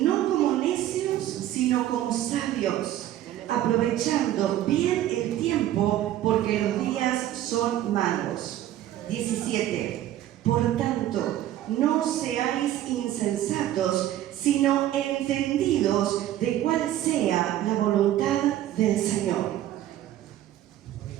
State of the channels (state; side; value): quieter; left; 12.8 dB